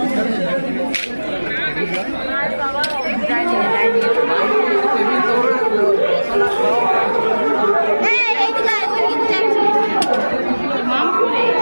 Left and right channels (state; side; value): inverted; both; correlation -1.00